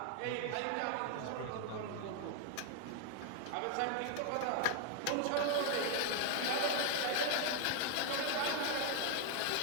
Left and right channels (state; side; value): different; both; correlation 0.00